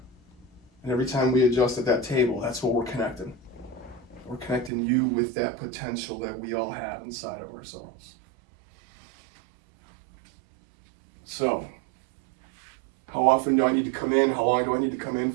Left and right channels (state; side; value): drops out; left; at 4.7 s